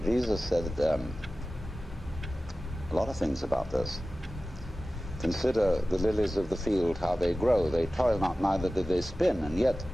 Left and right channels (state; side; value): normal; both; correlation 0.96